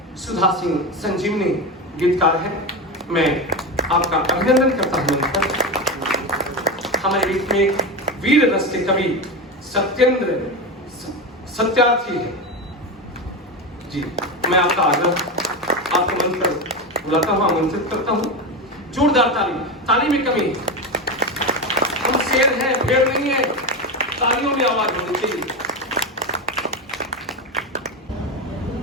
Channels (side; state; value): both; normal; correlation 0.18